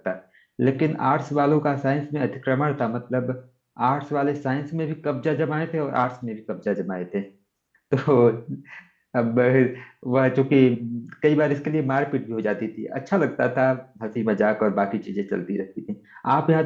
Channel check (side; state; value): both; identical; correlation 1.00